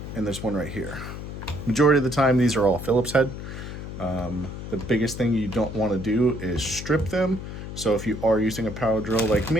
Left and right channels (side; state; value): left; noise; hum, 9 dB below the sound